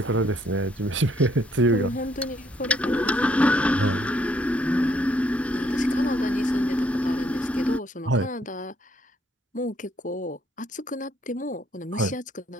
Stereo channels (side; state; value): both; normal; correlation 0.68